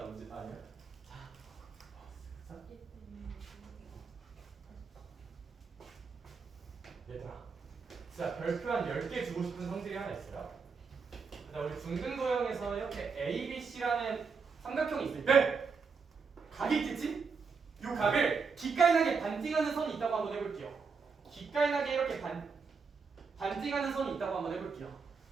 언제? 아니야. 자, 얘들아, 진짜 별표 한 10개 주고 싶은 성질이 하나 있어요. 우리 중등도형에서 이렇게 ABC라는 삼각형이 있을 때 각이 있겠지? 이 각을 기깔나게 반띵하는 선이 있다고 한번 해볼게요. 기깔나게 이렇게 반띵하는 선이 있다고 한번 해볼게요.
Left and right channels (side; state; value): left; quieter; 5.2 dB